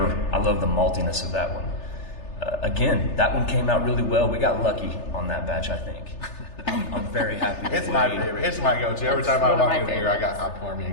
I love the maltiness of that one. Again, that one came out really well. We got lucky on that batch, I think. I'm very happy with It's the my way- favorite. It's my go-to. Every time one I of walk my in here, I pour me a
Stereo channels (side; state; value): right; late; 3.3 ms